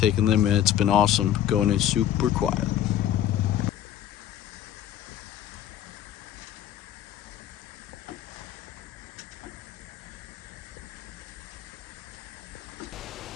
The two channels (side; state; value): right; quieter; 11.1 dB